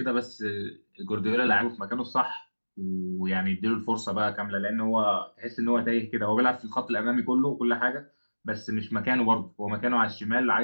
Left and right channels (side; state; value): both; inverted; correlation -1.00